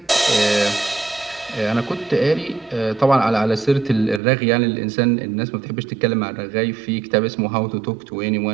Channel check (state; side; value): drops out; left; at 4.2 s